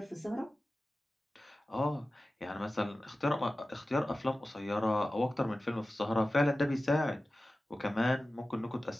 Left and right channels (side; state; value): both; normal; correlation 0.95